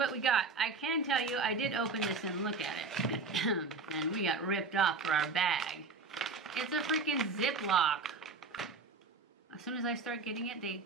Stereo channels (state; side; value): quieter; left; 4.2 dB